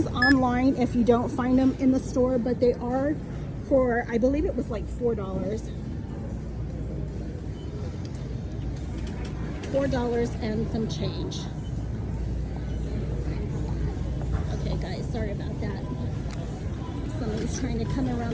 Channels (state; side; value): identical; both; correlation 1.00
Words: online if you don't find them in the store, but they are for, I believe it was like $4. $4 and some change. Okay guys, sorry about that. Somebody's trying to come